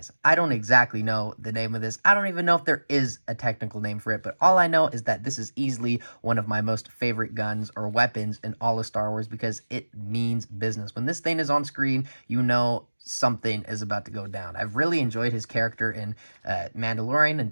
I don't exactly know the name of this. I don't even know if there is a technical name for it, but all I know is that this is easily one of my most favorite guns or weapons in all of Star Wars, because it means business. When this thing is on screen, you know something is about to go down. I've really enjoyed his character in Mandalorian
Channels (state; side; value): inverted; both; correlation -1.00